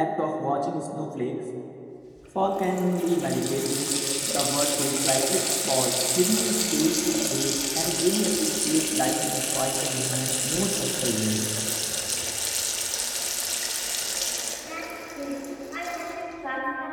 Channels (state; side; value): identical; both; correlation 1.00